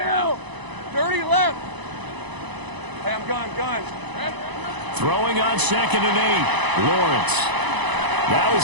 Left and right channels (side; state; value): left; late; 1.0 ms